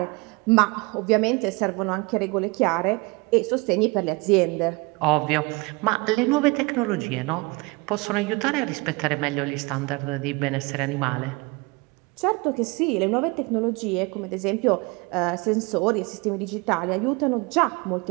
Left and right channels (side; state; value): left; quieter; 26.5 dB